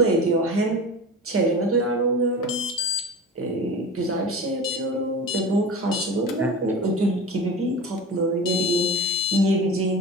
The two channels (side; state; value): both; normal; correlation 0.32